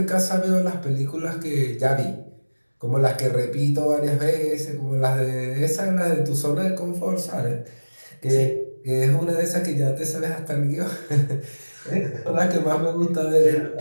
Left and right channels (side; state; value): both; inverted; correlation -1.00